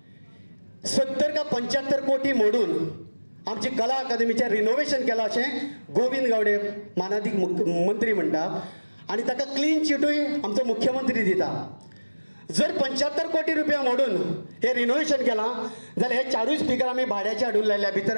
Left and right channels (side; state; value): both; inverted; correlation -1.00